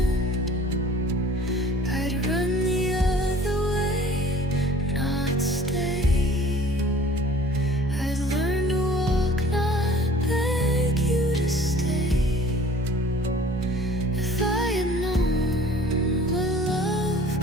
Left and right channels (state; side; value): normal; both; correlation 0.50